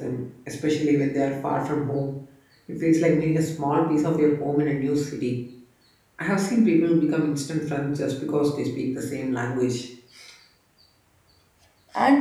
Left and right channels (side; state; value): both; identical; correlation 1.00